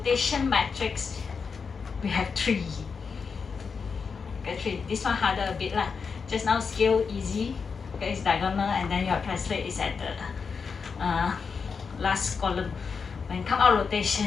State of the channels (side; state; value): right; quieter; 5.5 dB